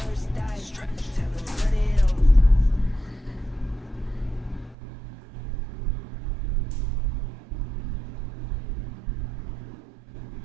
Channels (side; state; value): left; drops out; at 4.8 s